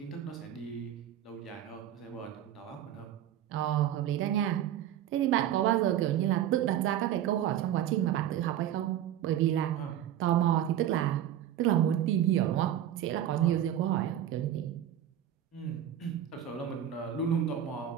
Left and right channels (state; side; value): quieter; left; 11.0 dB